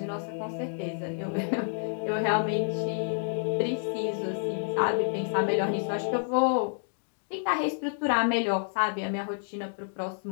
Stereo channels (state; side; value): silent; right; digital silence